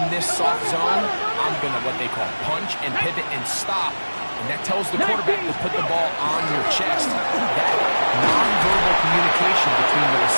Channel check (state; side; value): inverted; both; correlation -1.00